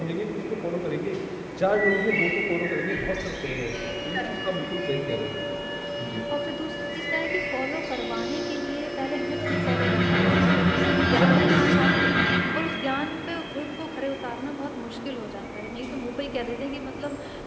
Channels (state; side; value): identical; both; correlation 1.00